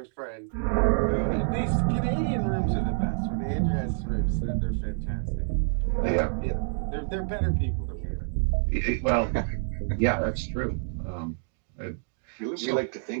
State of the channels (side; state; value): left; silent; digital silence